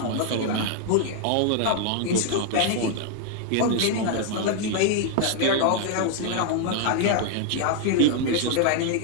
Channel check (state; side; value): different; both; correlation 0.00